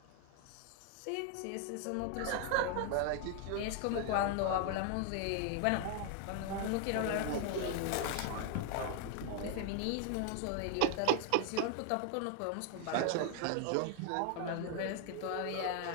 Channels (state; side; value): different; both; correlation 0.00